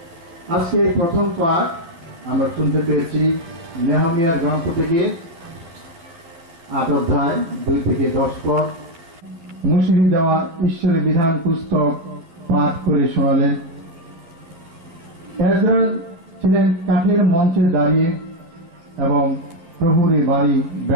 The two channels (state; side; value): late; left; 12 ms